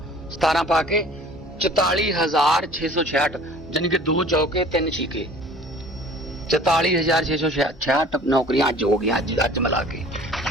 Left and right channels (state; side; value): normal; both; correlation 0.48